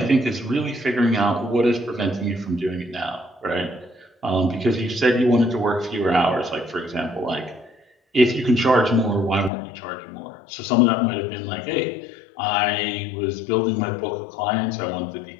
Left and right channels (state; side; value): drops out; right; at 9.5 s